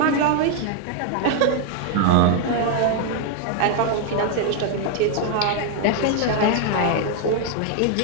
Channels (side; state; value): both; different; correlation 0.00